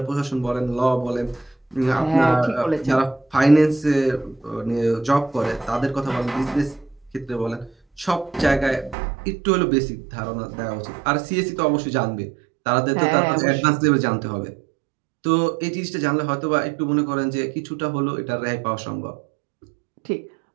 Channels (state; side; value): drops out; left; at 9.0 s